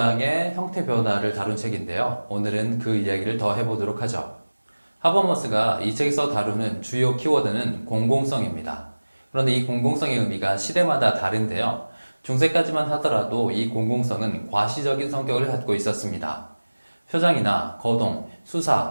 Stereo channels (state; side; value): inverted; both; correlation -1.00